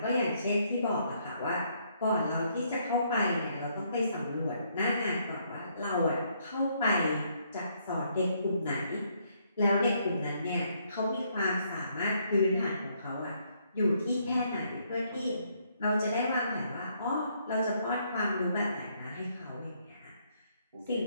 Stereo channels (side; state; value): both; inverted; correlation -0.71